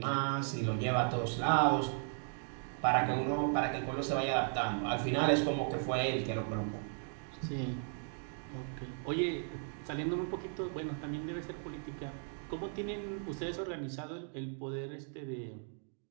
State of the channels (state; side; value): silent; left; 54 dB below the other